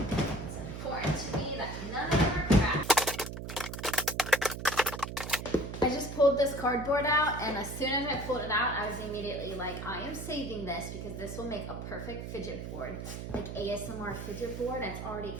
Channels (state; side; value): noise; right; hum, 7 dB below the sound